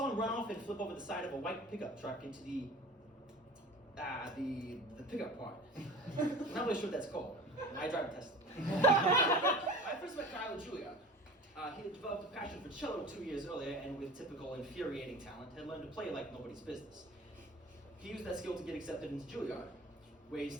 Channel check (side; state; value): both; normal; correlation 0.38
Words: him run off and flip over the side of a white pickup truck into the pickup part. I'm not really sure what that's called. I drive a Tesla. I first met Kyle at Juilliard. He had developed a passion for cello 2 years earlier, and with typical infuriating talent, had learned to play like nobody's business. He used that skill to get accepted into Juilliard, where he